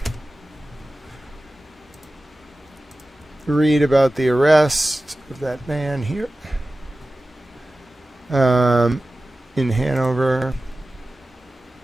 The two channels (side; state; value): both; normal; correlation 0.95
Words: Read about the arrest of that man here in Hanover.